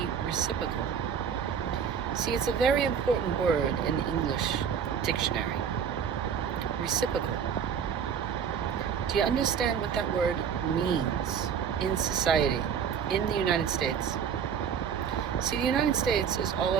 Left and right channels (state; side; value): quieter; left; 7.4 dB